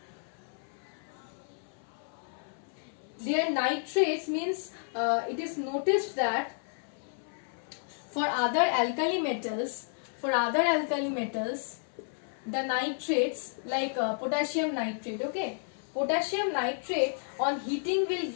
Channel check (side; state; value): right; silent; 57 dB below the other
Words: Their nitrates means it is noticed that for other alkali metals, the nitrates like potassium nitrate, okay, potassium nitrate on heating will